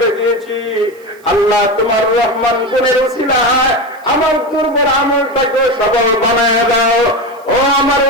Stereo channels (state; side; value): noise; right; hiss, 30 dB below the sound